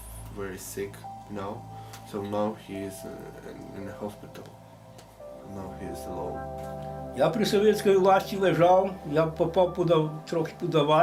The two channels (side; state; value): both; identical; correlation 1.00